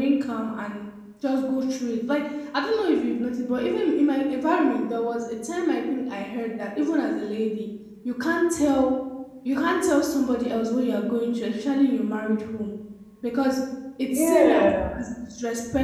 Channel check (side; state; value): both; identical; correlation 1.00